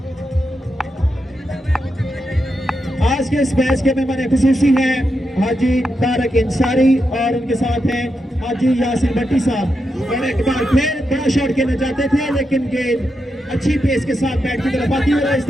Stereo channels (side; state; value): both; normal; correlation 0.86